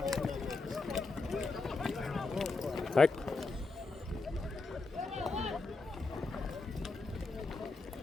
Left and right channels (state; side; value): quieter; right; 3.7 dB